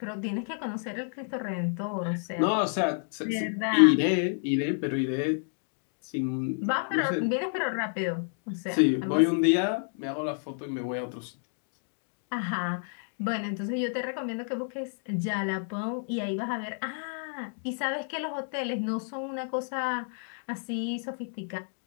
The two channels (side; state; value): right; silent; 58 dB below the other